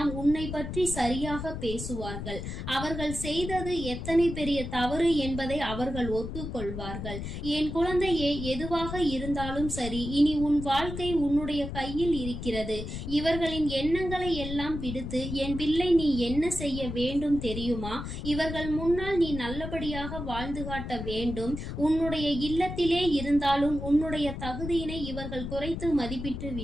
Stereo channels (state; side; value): noise; left; rumble, 7 dB below the sound